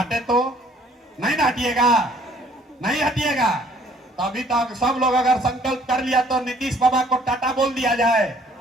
तो नहीं ना हटिएगा, नहीं हटिएगा। तो अभी तक सब लोग अगर संकल्प कर लिया तो नीतीश बाबा को टाटा बोल दिया जाए।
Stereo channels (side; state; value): both; normal; correlation 0.59